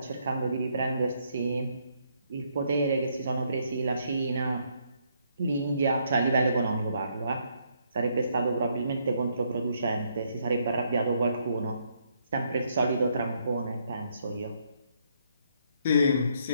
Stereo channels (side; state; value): both; inverted; correlation -0.73